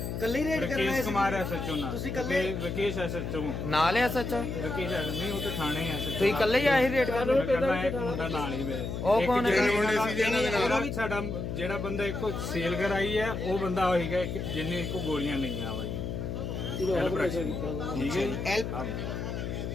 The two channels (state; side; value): noise; left; hum, 4 dB below the sound